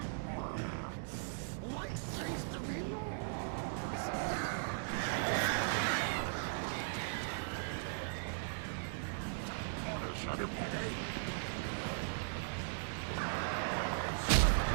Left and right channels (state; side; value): silent; left; digital silence